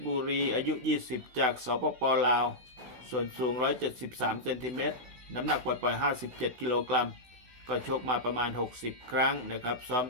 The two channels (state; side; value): late; left; 16 ms